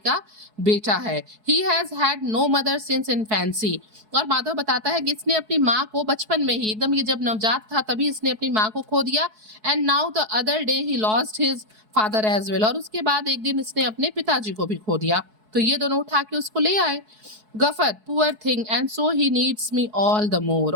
बेटा है। He has had no mother since infancy. और माधव बताता है कि इसने अपनी माँ को बचपन में ही, एकदम ये जब नवजात था तभी इसने अपनी माँ को खो दिया। And now the other day he lost his father as well. और उसके बाद एक दिन इसने अपने पिताजी को भी खो दिया। तो ये दोनों उठा के उसको ले आए। Gruffudd, poor thing and so he needs me all the more.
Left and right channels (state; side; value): late; left; 4.7 ms